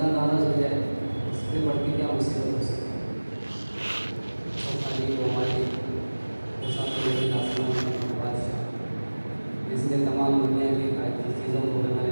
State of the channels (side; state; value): both; inverted; correlation -1.00